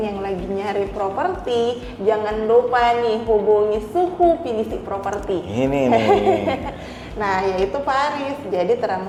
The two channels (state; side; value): identical; both; correlation 1.00